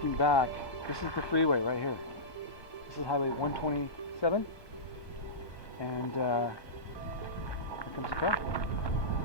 back, this is the freeway right here. This is Highway 127, and here comes the car.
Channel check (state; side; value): late; right; 1.2 ms